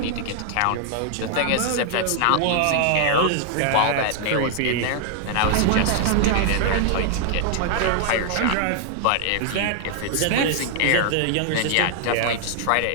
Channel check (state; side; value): different; both; correlation -0.01